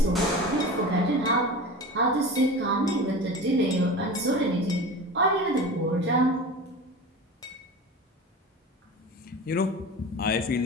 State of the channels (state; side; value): normal; both; correlation 0.32